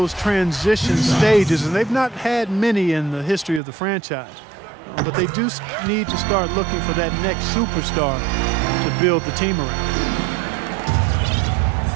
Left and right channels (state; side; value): drops out; left; at 3.6 s